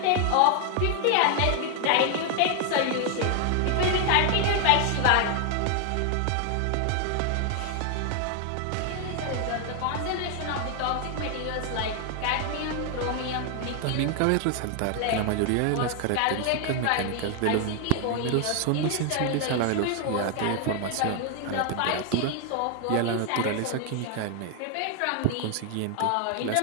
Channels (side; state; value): both; different; correlation 0.00